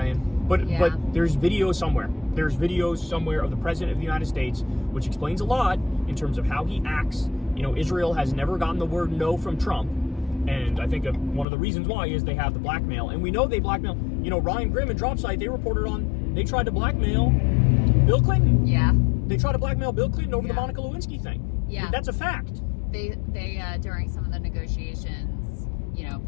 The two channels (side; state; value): right; drops out; at 11.5 s